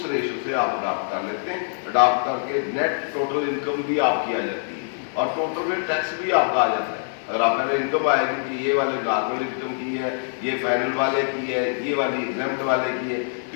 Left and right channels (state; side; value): silent; right; 63 dB below the other